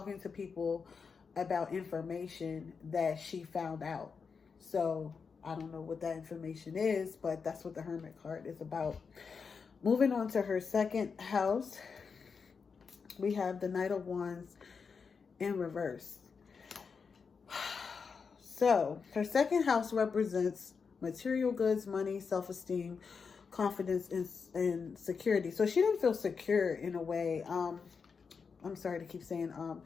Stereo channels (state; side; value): quieter; right; 5.5 dB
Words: to people about information that she found out. So I don't know what that information is, but that's what the Hermit card is about. Moving on to her second house, we have the Knight of Wands in reverse. So her second house represents material goods, money, self-esteem, confidence, and security. So she didn't feel secure in a way. I'm sorry to keep saying